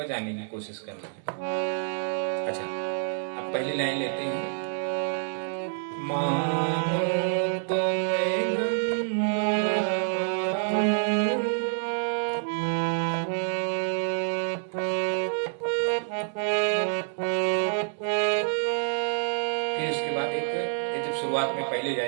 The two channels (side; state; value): left; silent; digital silence